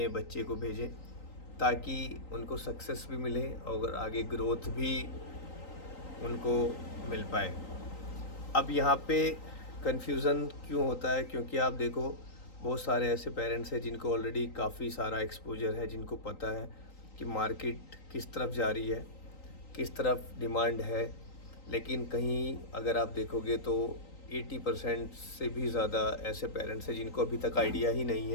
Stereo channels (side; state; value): right; late; 3.9 ms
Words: बच्चे को भेजें ताकि उनको सक्सेस भी मिले और आगे ग्रोथ भी उनको मिल पाए। अब यहाँ पे कन्फ्यूज़न क्यों होता है? क्योंकि आप देखो, बहुत सारे ऐसे पेरेंट्स हैं जिनको ऑलरेडी काफ़ी सारा एक्सपोजर है, जिनको पता है कि मार्केट किस तरफ जा रही है, किस तरफ डिमांड है। लेकिन कहीं अगर आप देखोगे तो 80% से भी ज़्यादा ऐसे पेरेंट्स हैं जिनको अभी तक आइडिया ही नहीं